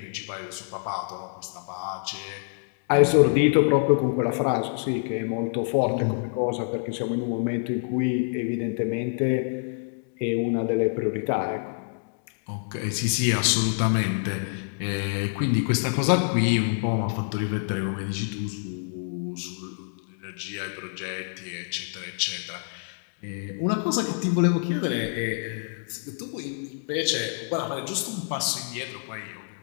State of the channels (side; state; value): right; silent; digital silence